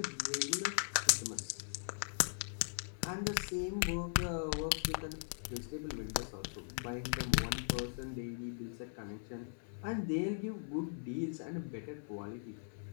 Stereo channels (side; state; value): right; silent; 51 dB below the other